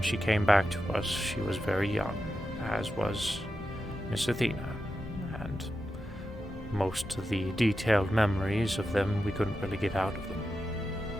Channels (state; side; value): normal; both; correlation 0.89